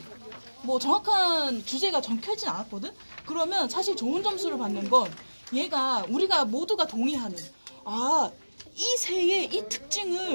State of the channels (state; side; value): inverted; both; correlation -1.00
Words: 뭐 정확한 주제가 적혀있진 않았거든? 그러면 사실 좋은 점수를 받는 건 얘가 우리가 모두가 동의하는 이 새의 이